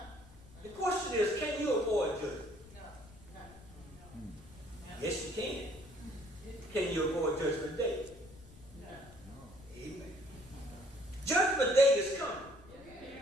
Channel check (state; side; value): noise; left; rumble, 20 dB below the sound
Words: The question is, can you avoid judgment? Yes, you can. Can you avoid Judgment Day? Amen. Judgment Day is coming.